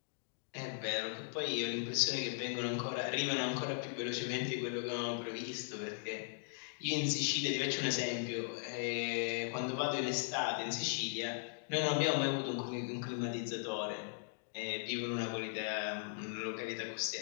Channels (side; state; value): right; silent; digital silence